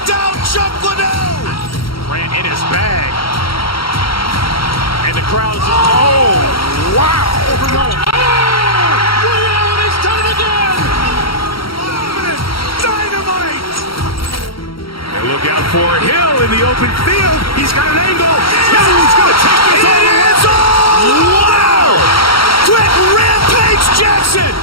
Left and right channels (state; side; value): late; right; 0.74 ms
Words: out Chuck Liddell. Ran in his bag. And the crowd is, oh, wow. And he's done it again. Dynamite. And look out for Hill in the open field. He's got an angle. He's going to take this all the way. Wow! Quick Rampage Jackson.